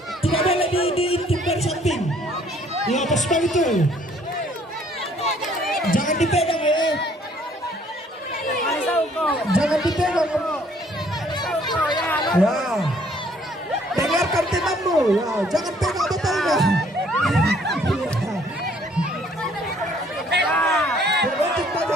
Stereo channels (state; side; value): normal; both; correlation 0.61